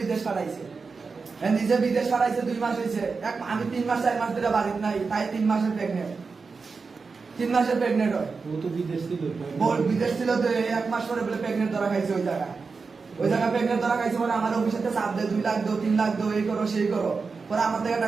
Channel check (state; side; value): quieter; left; 4.7 dB